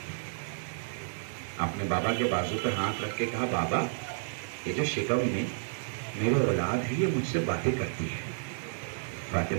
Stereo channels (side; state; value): left; silent; digital silence